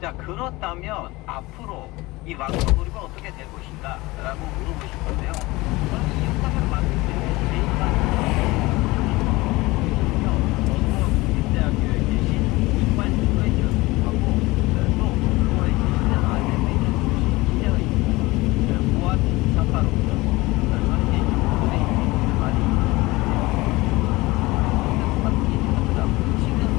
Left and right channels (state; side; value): quieter; right; 21.2 dB